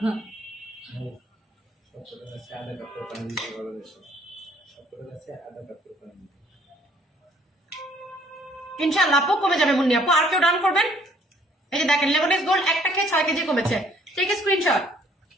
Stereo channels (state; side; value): normal; both; correlation 0.61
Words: সবকটার কাছে আধা কাপ করে পানি দিতে বলা হয়েছে। সবকটার কাছে আধা কাপ করে পানি দিতে। ইনশাআল্লাহ আপু কমে যাবে মুন্নি আপু। আর কেউ ডান করবেন? এই যে দেখেন লেমনেক্স গোল্ড একটা খেয়ে 6 কেজি কমেছে, টেক স্ক্রিনশট।